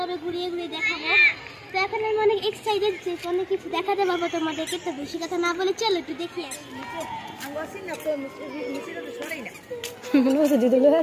ঘুরিয়ে ঘুরিয়ে দেখাবো। তো এখন আমি অনেক এক্সাইটেড যে অনেক কিছু দেখাতে পারবো তোমাদেরকে। তো বেশি কথা না বলে চলো একটু দেখি আসি।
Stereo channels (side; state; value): both; identical; correlation 1.00